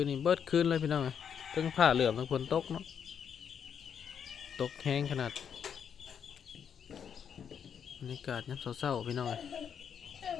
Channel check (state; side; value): quieter; right; 7.7 dB